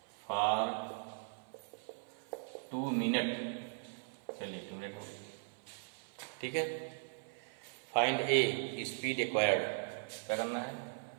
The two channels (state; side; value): silent; left; 52 dB below the other